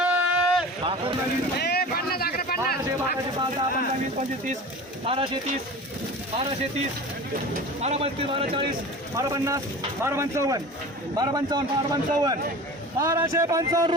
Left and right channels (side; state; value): both; normal; correlation 0.36